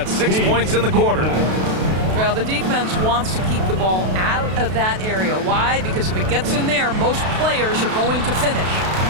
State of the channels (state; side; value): late; left; 32 ms